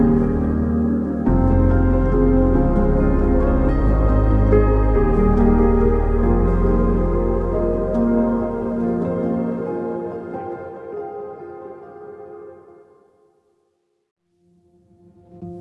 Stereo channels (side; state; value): both; identical; correlation 1.00